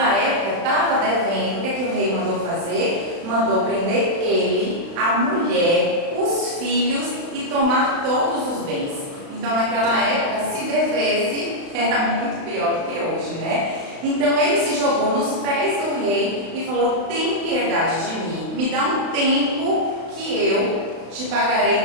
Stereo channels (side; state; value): left; late; 35 ms